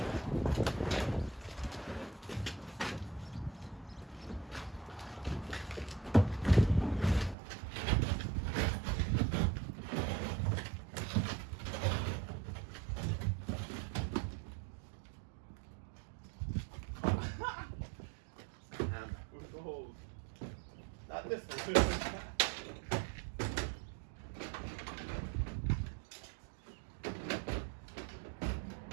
Not this one.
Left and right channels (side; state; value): left; drops out; at 7.4 s